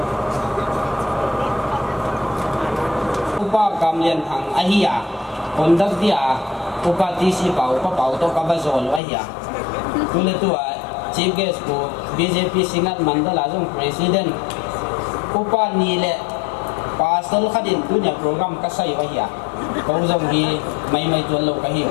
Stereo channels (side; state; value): right; drops out; at 9.0 s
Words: upa kamlian thang ahia kondak dia upa tisi pau to kabazol ahia tule tua chief guest ko BJP singat mandala jong president upa nile pasal khadin punya program kasai wahia kau jong hi mai tuan lo kahiu